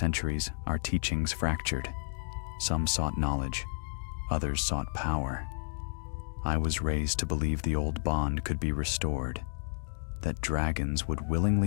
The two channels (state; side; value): silent; right; digital silence